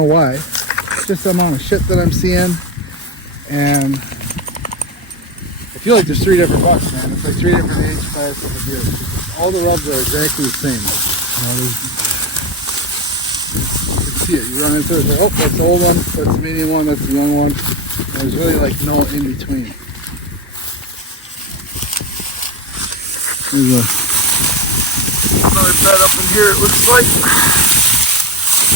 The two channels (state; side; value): normal; both; correlation 0.17